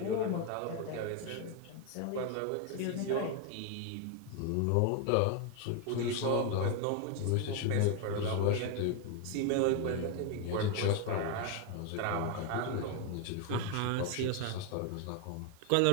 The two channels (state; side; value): different; both; correlation 0.01